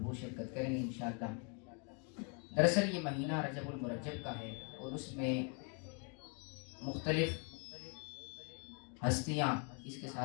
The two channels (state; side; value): quieter; right; 37.3 dB